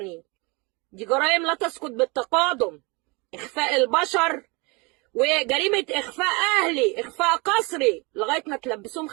دي جرائم لا تسقط بالتقادم، اخفاء البشر وجريمه اخفاء اهلي، اخفاء قسري، لغايه ما تلبسوهم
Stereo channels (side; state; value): left; quieter; 28.2 dB